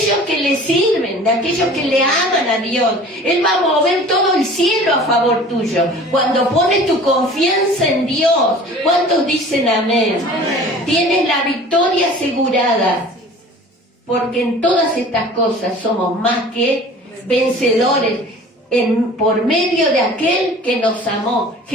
que le sirven, de aquellos que le aman a Dios. Él va a mover todo el cielo a favor tuyo. Cuando pones tu confianza en Dios, ¿cuántos dicen amén? Amén. Tienes la victoria asegurada. Porque en todas estas cosas somos más que vencedores por medio de aquel que nos amó,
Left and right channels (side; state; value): both; normal; correlation 0.44